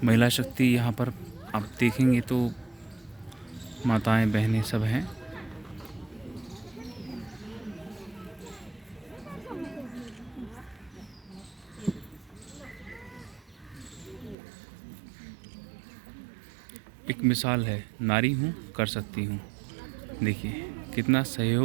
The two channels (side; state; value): left; drops out; at 14.4 s